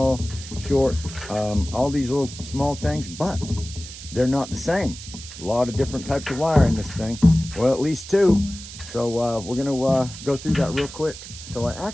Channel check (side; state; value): right; noise; hiss, 13 dB below the sound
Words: short, all these little small things, but they're not the same. A lot of different types of wire in this thing. Well, at least two. So we're going to go through that real quick. So I